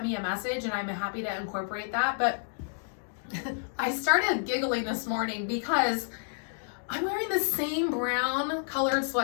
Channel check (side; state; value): right; silent; digital silence